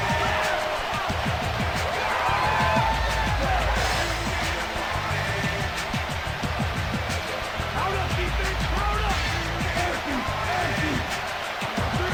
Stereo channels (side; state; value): both; identical; correlation 1.00